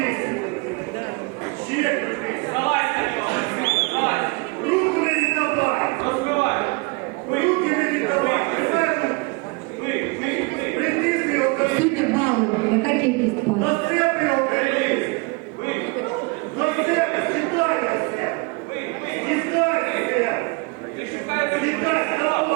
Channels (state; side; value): quieter; left; 28.7 dB